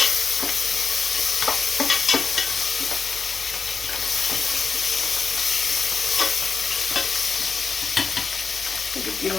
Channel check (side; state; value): right; quieter; 5.1 dB